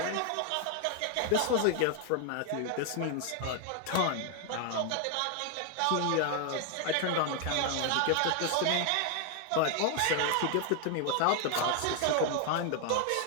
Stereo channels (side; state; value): both; different; correlation 0.01